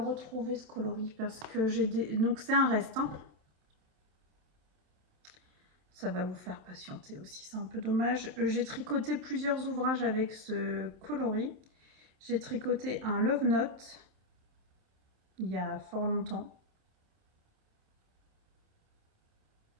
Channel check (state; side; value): late; left; 27 ms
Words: ce coloris? Parce que j'ai des... Donc c'est un reste. Hein. Ça va vous faire patienter aussi, c'est un peu dommage. J'ai tricoté plusieurs ouvrages avec ce coloris. J'ai tricoté un Love Note il y a fort longtemps.